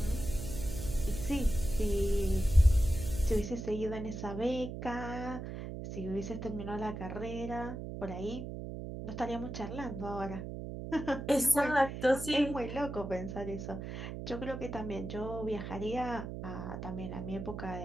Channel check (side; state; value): right; noise; hum, 7 dB below the sound